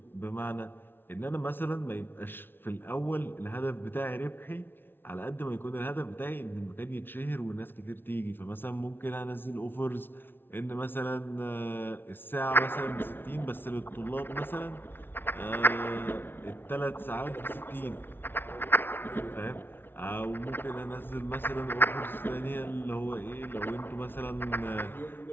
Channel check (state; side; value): late; right; 0.10 ms